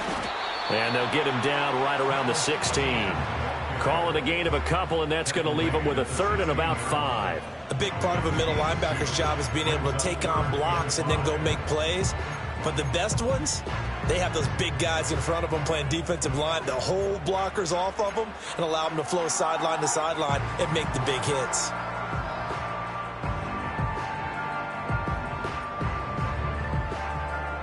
And they'll get him down right around the 16. Call it a gain of a couple, and that's going to leave him with a 3rd and about 5. A big part of a middle linebacker's job is being able to take on blocks and then go make plays. But the best ones, they have those big guys in front of them playing defensive line to hold blockers off of them and allow them to flow sideline to sideline and make the big hits.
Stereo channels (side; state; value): both; identical; correlation 1.00